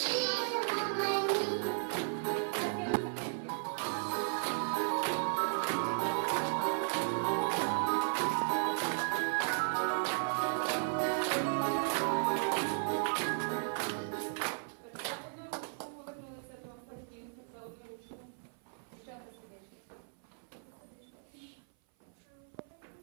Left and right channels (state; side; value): silent; left; 54 dB below the other